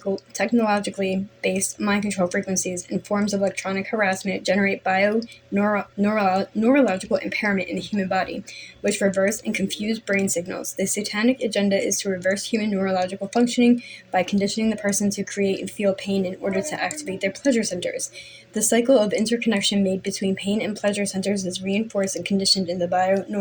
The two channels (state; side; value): identical; both; correlation 1.00